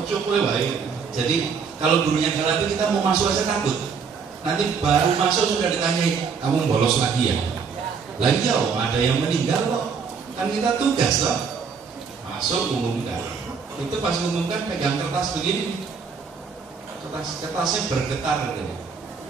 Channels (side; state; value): left; quieter; 5.8 dB